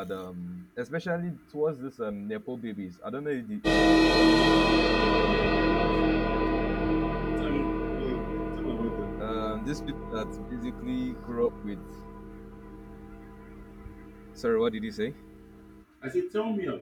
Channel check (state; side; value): identical; both; correlation 1.00